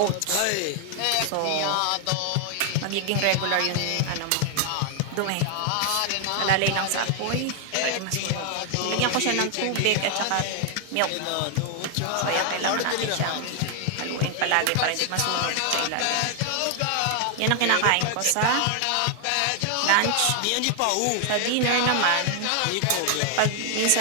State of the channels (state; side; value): different; both; correlation 0.00